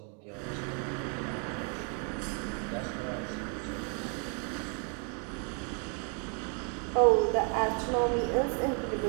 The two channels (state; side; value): quieter; left; 39.5 dB